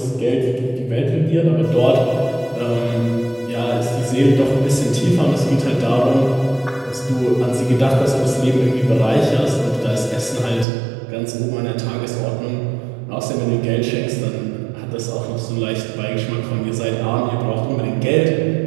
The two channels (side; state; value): left; drops out; at 10.7 s